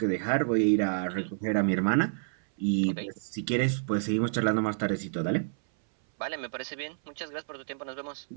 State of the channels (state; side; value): silent; left; 58 dB below the other